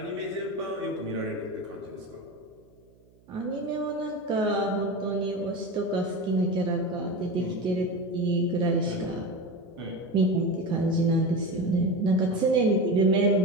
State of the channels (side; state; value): right; noise; hum, 30 dB below the sound